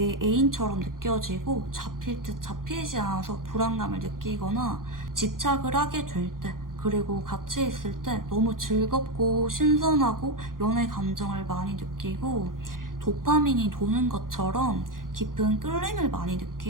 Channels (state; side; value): late; left; 0.91 ms